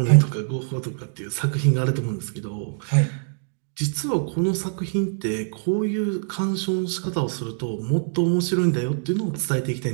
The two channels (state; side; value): silent; left; digital silence